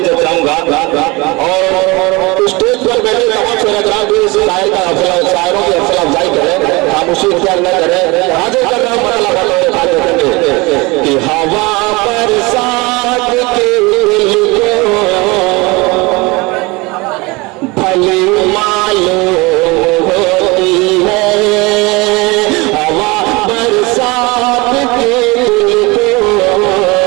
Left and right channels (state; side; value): quieter; left; 24.6 dB